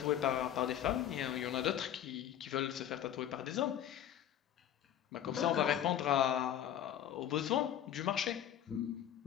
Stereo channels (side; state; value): right; quieter; 10.7 dB